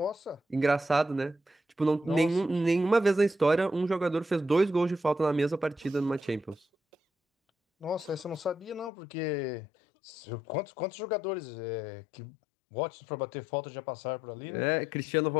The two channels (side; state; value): right; drops out; at 8.9 s